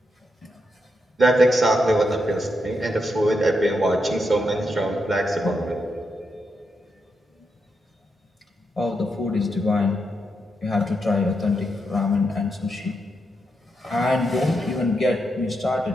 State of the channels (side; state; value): both; normal; correlation 0.83